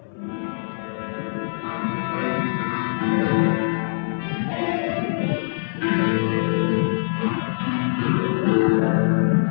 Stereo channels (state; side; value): silent; right; 63 dB below the other